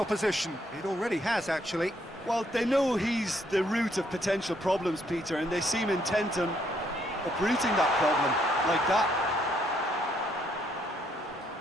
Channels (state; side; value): normal; both; correlation 0.71